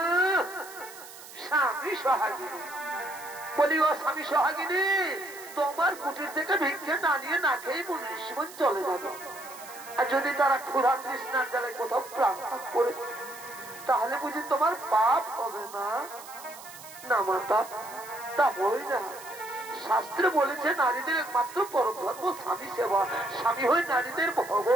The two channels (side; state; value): right; noise; hiss, 16 dB below the sound